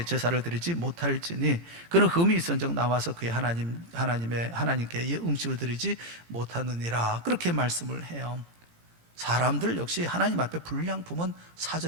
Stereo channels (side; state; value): left; late; 18 ms